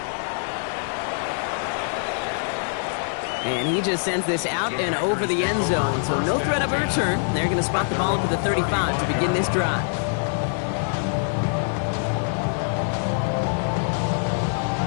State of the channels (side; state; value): right; silent; digital silence